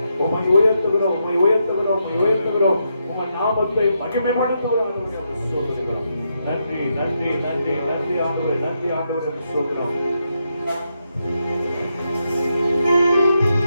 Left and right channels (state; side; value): inverted; both; correlation -0.82